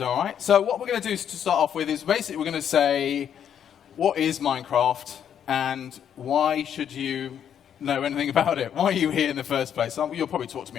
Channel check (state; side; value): quieter; right; 9.0 dB